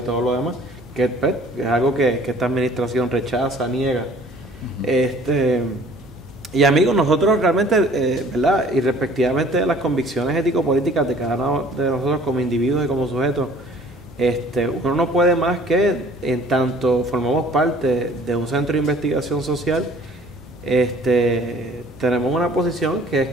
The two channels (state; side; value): normal; both; correlation 0.53